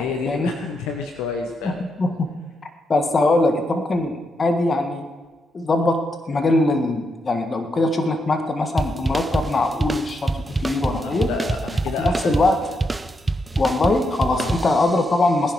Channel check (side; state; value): both; normal; correlation 0.82